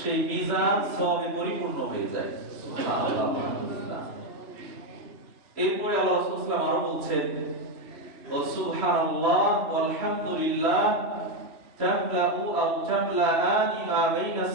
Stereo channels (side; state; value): left; late; 3.0 ms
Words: মিজান সবে পরিপূর্ণ হয়ে যায়। সুবহানাল্লাহ। এরপরে আল্লাহ রাসূল সাল্লাল্লাহু আলাইহি ওয়াসাল্লাম আরো বলছেন, ওয়া সুবহানাল্লাহ ওয়াল হামদুলিল্লাহ তামলাউ আও তামলাআনি মা বাইনাস